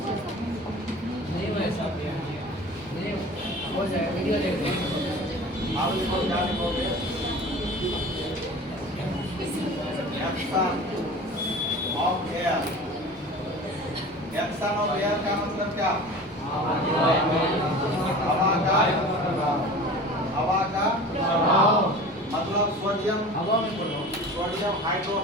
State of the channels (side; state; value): both; normal; correlation 0.38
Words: आप लिखो क्या लिखोगे? एक्शन ऑफ एयर का मतलब क्या? हवा का मतलब सोडियम